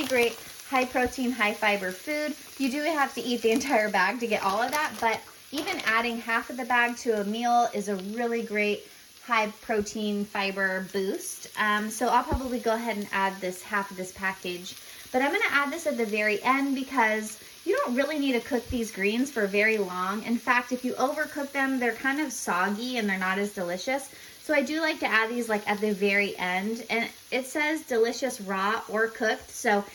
great high protein, high fiber food. You do have to eat the entire bag to get all of that, but even adding half of the bag to a meal is a really great high protein fiber boost. So I'll probably go ahead and add this half of this package. But I'm gonna add this at the very end because you don't really need to cook these greens for very long. In fact, if you overcook them, they're kind of soggy and they're not as delicious. So I do like to add these like at the very end. And it says delicious raw or cooked. So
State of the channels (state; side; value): identical; both; correlation 1.00